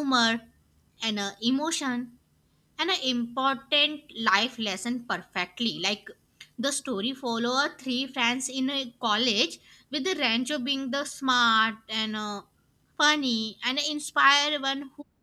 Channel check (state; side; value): identical; both; correlation 1.00